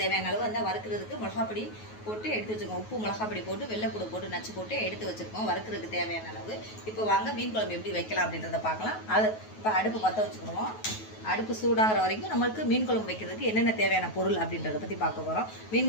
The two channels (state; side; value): late; right; 9.3 ms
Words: தேவையான அளவு அந்த வறுக்கிறதுக்கு மிளகாப்பொடி போட்டு எடுத்து வச்சுருக்கோம். உப்பு மிளகாப்பொடி போட்டு வெள்ளைப்பூடு போட்டு நச்சு போட்டு எடுத்து வச்சுருக்கோம் வறுக்கிறதுக்கு தேவையான அளவு. இப்போ வாங்க மீன் குழம்பு எப்படி வைக்கலாம் அப்படின்றத பார்க்கலாம். அது இப்போ அடுப்பு பற்ற வச்சுக்கணும். அடுப்பு சூடாகிற வரைக்கும் நம்மளுக்கு மீன் குழம்பு வைக்கிறதுக்கு என்னென்ன தேவையான பொருள் அப்படின்றத பற்றி பார்க்க போகிறோம்.